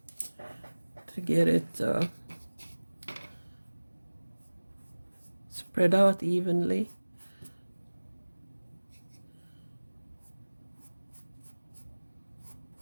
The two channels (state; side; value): inverted; both; correlation -1.00